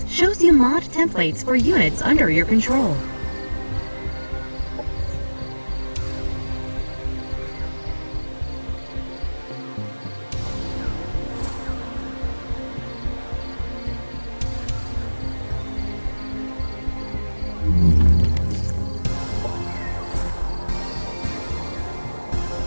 shows you mod templates for units under your control.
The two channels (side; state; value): both; inverted; correlation -1.00